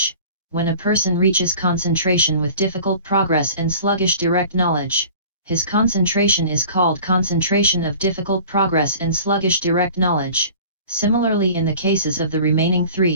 when a person reaches concentration with difficult progress and sluggish direct knowledge, his concentration is called concentration of difficult progress and sluggish direct knowledge, similarly in the cases of the remaining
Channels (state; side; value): inverted; both; correlation -0.44